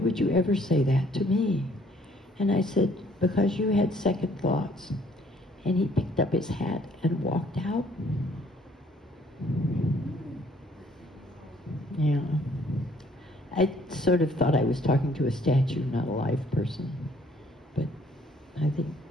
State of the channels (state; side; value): normal; both; correlation 0.62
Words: you ever say that to me? And I said, because you had second thoughts. And he picked up his hat and walked out. Yeah. I sort of thought I was talking to a statue, not a live person. But I think